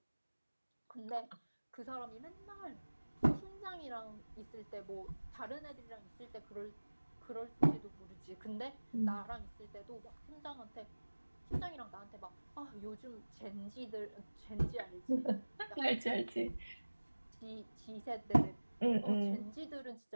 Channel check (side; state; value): both; inverted; correlation -1.00